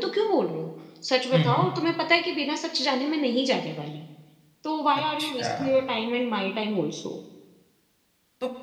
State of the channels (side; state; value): both; identical; correlation 1.00